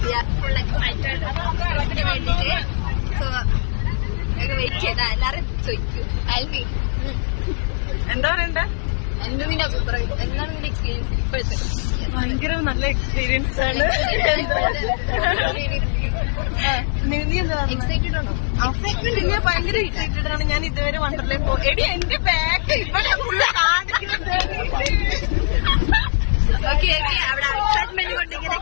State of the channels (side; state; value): right; silent; 55 dB below the other